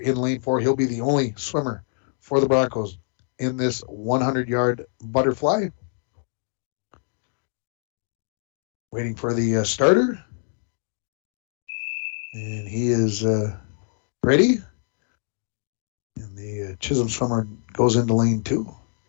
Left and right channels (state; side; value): silent; right; digital silence